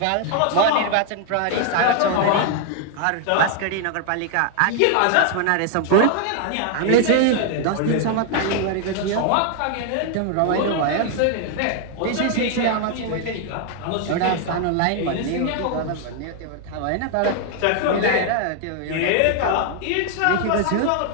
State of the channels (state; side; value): different; both; correlation 0.00